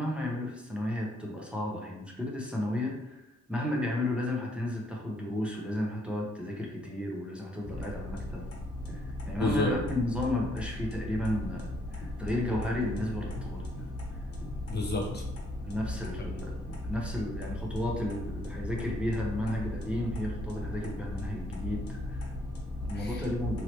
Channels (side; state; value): both; normal; correlation 0.71